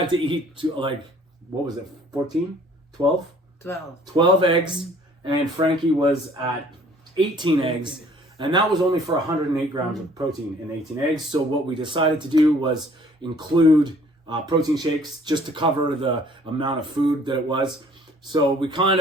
to eat what was it, 14? 12? 12 eggs, and Frankie was at 18 eggs, and that was only for 108 grams of protein in 18 eggs. So what we decided to do was include protein shakes just to cover the amount of food that it was. So we kind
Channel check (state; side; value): normal; both; correlation 0.56